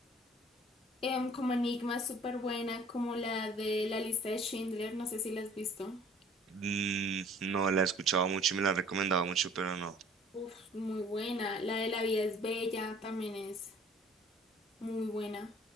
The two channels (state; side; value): normal; both; correlation 0.52